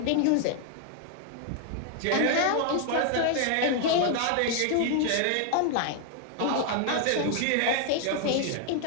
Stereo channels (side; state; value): both; different; correlation 0.00